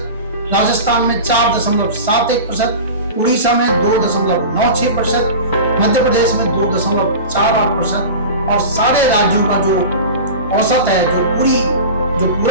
राजस्थान में 4.71%, उड़ीसा में 2.96%, मध्य प्रदेश में 2.48%, और सारे राज्यों का जो औसत है, जो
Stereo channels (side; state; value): both; inverted; correlation -0.32